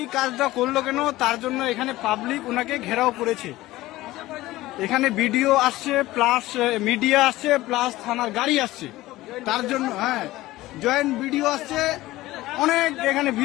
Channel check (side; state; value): right; quieter; 17.4 dB